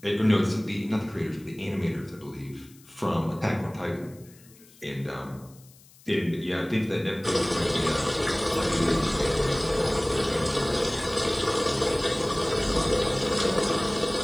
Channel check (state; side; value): noise; left; hiss, 26 dB below the sound